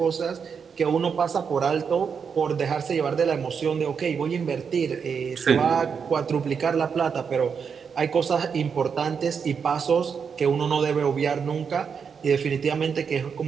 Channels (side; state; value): left; quieter; 6.4 dB